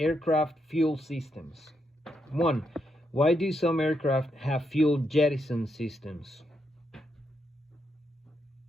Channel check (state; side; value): normal; both; correlation 0.80